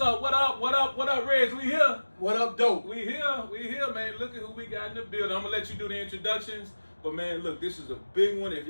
up? What up, Reg? We here. What up, dope? We here, man. Look at who we got in the building. I'm gonna let you do the introductions. But man, look, this is a big one. If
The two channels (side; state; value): both; inverted; correlation -1.00